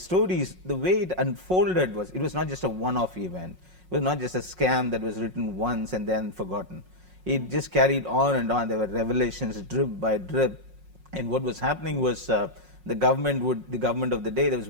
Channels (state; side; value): late; left; 5.5 ms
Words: the way it unfolded was, it was not just a one-off event. It was not just a scam that was written once and then forgotten. It just carried on and on. There were revelations drip by drip, and what was happening was the government of the day, there